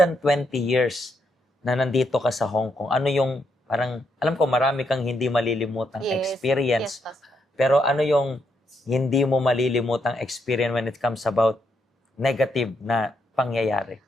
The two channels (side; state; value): both; normal; correlation 0.78